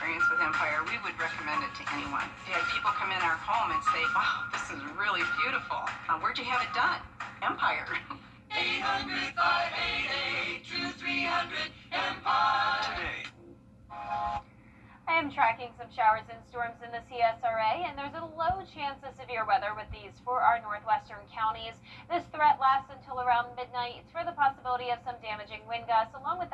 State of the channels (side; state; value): both; identical; correlation 1.00